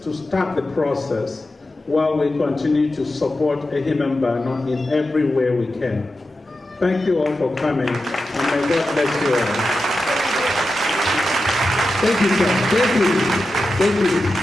to start the process while we continue to support Ehimembano in every way we can. Thank you all for coming, and may God bless you all. Thank you, sir. Thank you. Thank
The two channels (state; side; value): normal; both; correlation 0.91